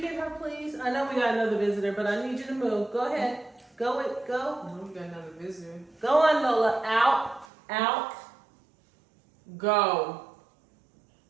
her, please? I know we got another visitor, but I need you to move. Go ahead. Go. No, we got another visitor. Go on, Lola. Out. Go.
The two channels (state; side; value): drops out; left; at 7.5 s